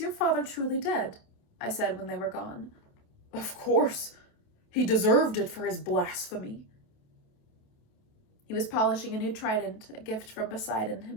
father truly dead?" I said when they were gone. "Of course. He deserved it for his blasphemy." He was polishing a new trident, a gift from Poseidon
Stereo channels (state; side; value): late; right; 27 ms